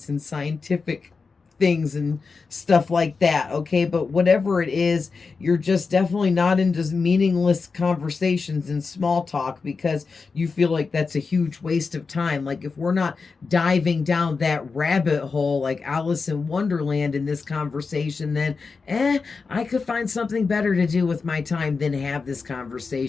and scientific things and stuff like that, okay? But whatever it is, you're just definitely not into meaningless conversations and small talk, because you feel like that's a huge waste of time. Like, if we're not diving down that rabbit hole like Alice in Wonderland in this conversation, then I could find something better to do with my time than have this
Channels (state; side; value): quieter; right; 4.7 dB